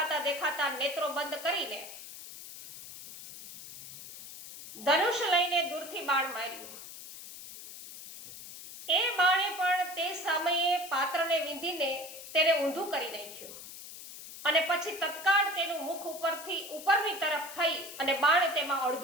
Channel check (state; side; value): noise; left; hiss, 13 dB below the sound